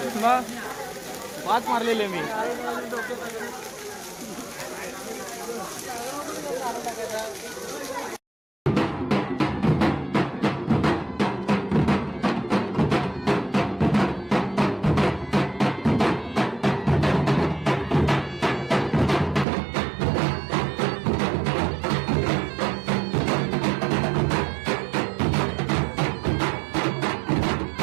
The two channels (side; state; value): left; drops out; at 19.5 s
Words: 5 मारलेले मी.